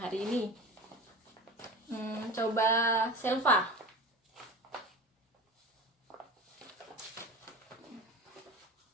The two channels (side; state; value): both; normal; correlation 0.33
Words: ini? Coba Selva.